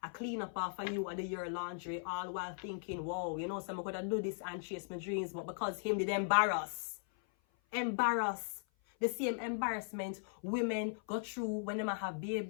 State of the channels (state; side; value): silent; right; 52 dB below the other